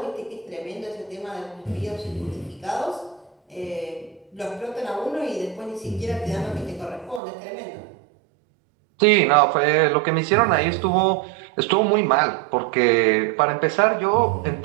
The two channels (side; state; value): left; drops out; at 7.2 s